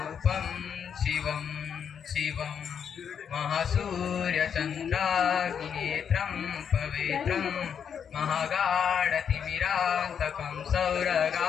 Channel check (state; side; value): quieter; right; 7.6 dB